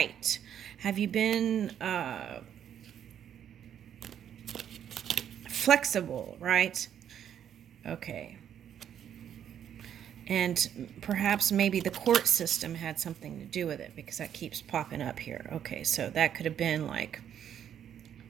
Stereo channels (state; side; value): quieter; left; 9.5 dB